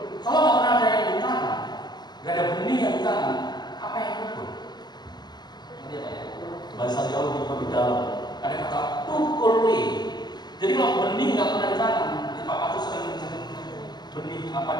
Kalau nggak pernah ada yang ditanam, nggak ada benih yang ditanam, apa yang tumbuh? Ini apa ya? Bahasa Jawa lebih dalam. Ada kata tukule. Jadi kalau benih nggak pernah ditanam, Pak Patu sering benih apa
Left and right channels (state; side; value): late; right; 0.20 ms